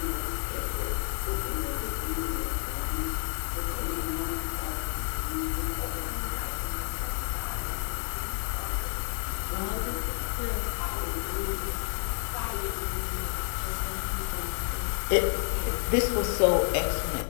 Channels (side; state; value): right; silent; 58 dB below the other